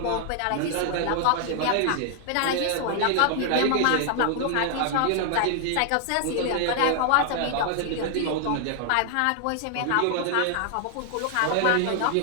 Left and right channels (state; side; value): different; both; correlation 0.00